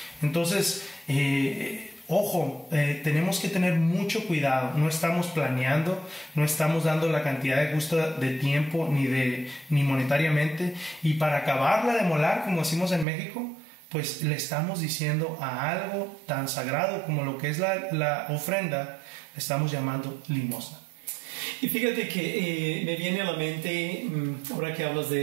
Entonces Ojo, tenemos que tener mucho cuidado. No estamos planeando, no estamos dando la cantidad de justa de tiempo ni monetariamente. Y para acabarla de molar, como decimos en México, pues le estamos diciendo a algo tan sagrado como lo que es la ofrenda, le estamos llamando limosna. Y fíjate que me viene a la mente, ahora que hablas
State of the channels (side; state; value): left; drops out; at 13.1 s